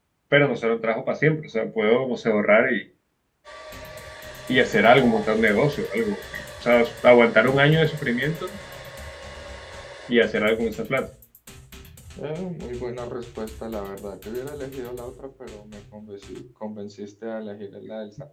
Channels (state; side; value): identical; both; correlation 1.00